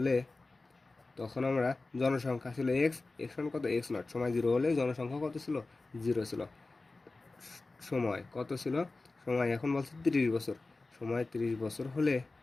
তখন আমরা জনসংখ্যা ছিল এক্স সমান কত এক্স নট। সময় 0 হলে জনসংখ্যা কত ছিল? 0 ছিল। সময় কত ছিল? সময় এখন বলছে 30 বছর। সময় 30 বছর হলে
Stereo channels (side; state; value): right; quieter; 3.4 dB